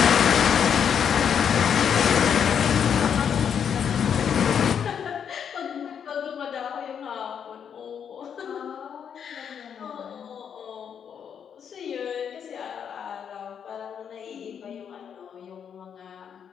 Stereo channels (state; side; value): quieter; right; 7.8 dB